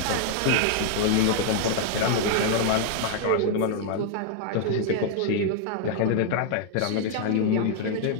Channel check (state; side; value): different; both; correlation 0.00